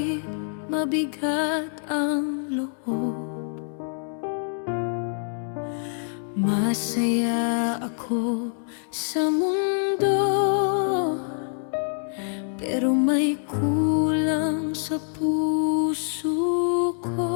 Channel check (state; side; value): silent; right; 61 dB below the other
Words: mabigat ang loob. Masaya ako sa mundo, pero may kulang sa puso